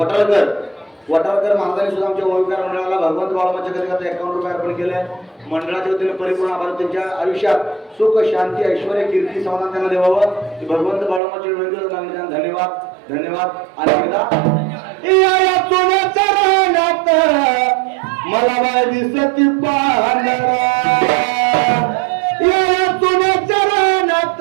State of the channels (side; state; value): left; drops out; at 11.2 s